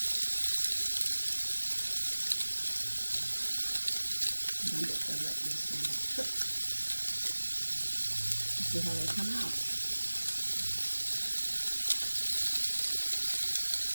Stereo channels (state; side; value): inverted; both; correlation -1.00